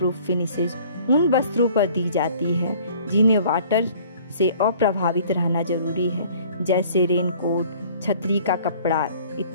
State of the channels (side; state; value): both; inverted; correlation -0.52